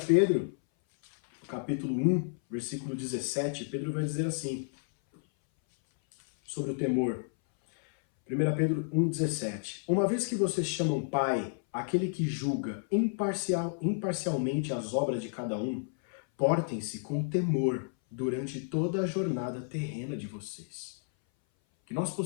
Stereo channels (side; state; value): right; silent; 57 dB below the other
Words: Pedro, capítulo 1, versículo 17, Pedro vai dizer assim, sobre o temor. 1 Pedro 1,17. Uma vez que vocês chamam Pai, aquele que julga imparcialmente as obras de cada um, portem-se com temor durante toda a jornada terrena de vocês. Que nós